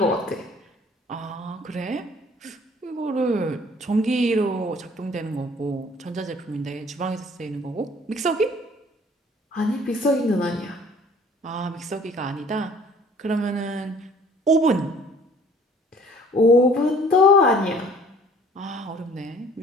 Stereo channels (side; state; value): both; normal; correlation 0.54